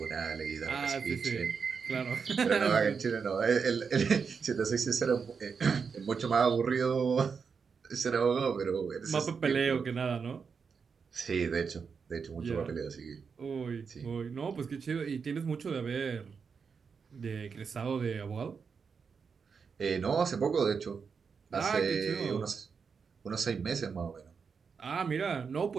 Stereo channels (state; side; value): quieter; left; 5.8 dB